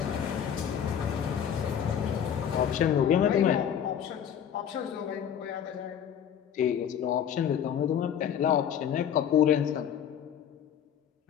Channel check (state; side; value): quieter; right; 8.9 dB